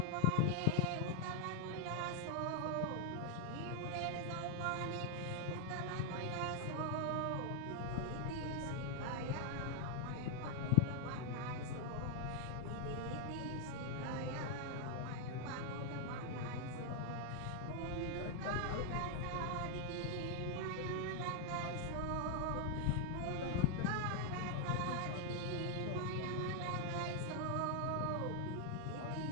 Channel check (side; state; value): both; different; correlation 0.00